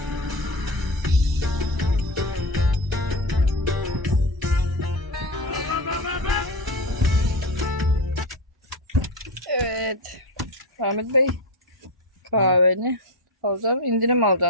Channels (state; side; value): normal; both; correlation 0.19